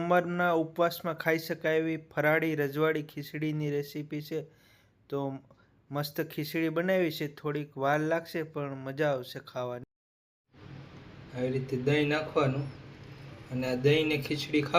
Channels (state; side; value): identical; both; correlation 1.00